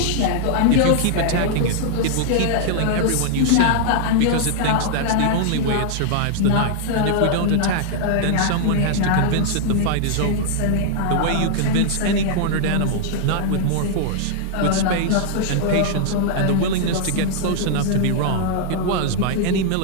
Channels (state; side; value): different; both; correlation -0.01